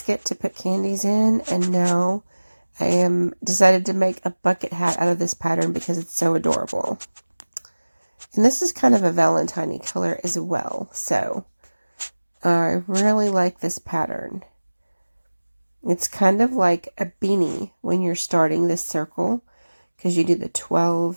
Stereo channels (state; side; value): inverted; both; correlation -1.00